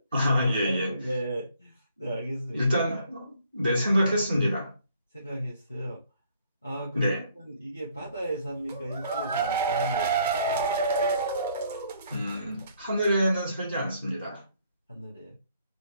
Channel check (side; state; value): both; inverted; correlation -0.65